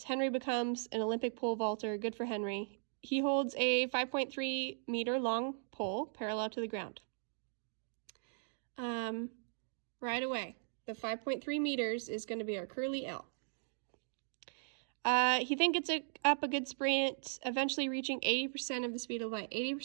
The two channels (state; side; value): silent; left; digital silence